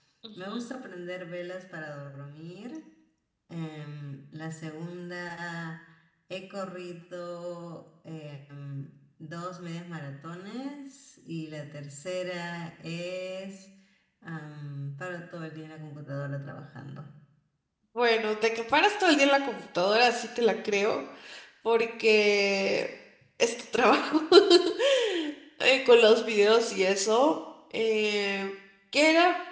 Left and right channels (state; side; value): identical; both; correlation 1.00